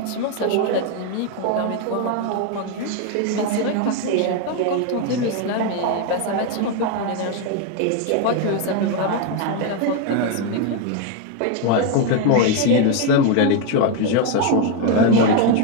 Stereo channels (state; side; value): different; both; correlation 0.01